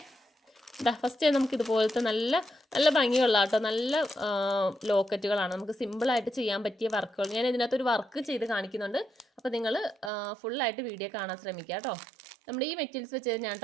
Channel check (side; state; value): left; drops out; at 10.1 s